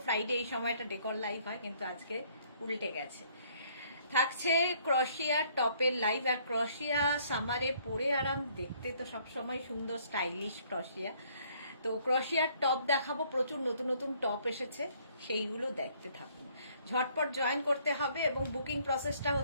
ফ্রাইডে এই সময়টা ডেকর লাইভ হয়, কিন্তু আজকে উল্টে গেছে। থাকছে ক্রশিয়া টপের লাইভ। আর ক্রশিয়া সামারে পরে আরাম, দেখতে তো সবসময় সুন্দর স্টাইলিশ ক্রশিয়া। তো ক্রশিয়ার টপ দেখাবো, প্রচুর নতুন নতুন টপ এসেছে, সেইগুলো দেখতে থাকুন। ঝটপট জয়েন করতে হবে এবং বুকিং প্রসেসটা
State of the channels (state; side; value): inverted; both; correlation -0.63